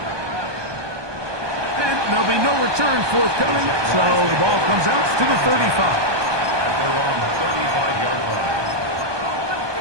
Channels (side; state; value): left; late; 1.2 ms